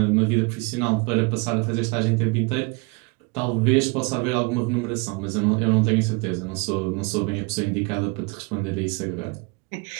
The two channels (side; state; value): left; quieter; 28.8 dB